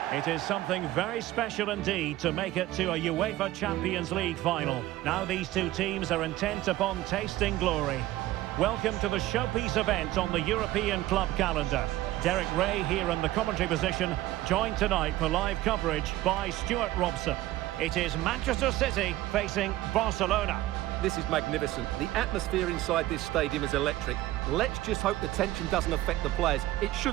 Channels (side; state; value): left; quieter; 16.0 dB